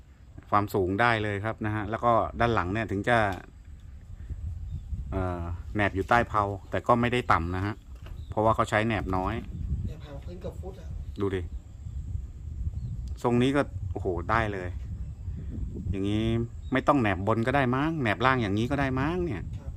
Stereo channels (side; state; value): both; identical; correlation 1.00